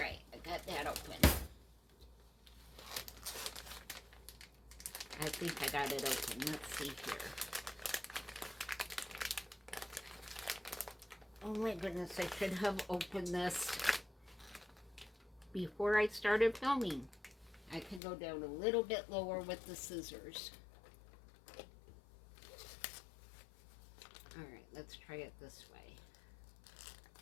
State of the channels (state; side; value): drops out; right; at 18.0 s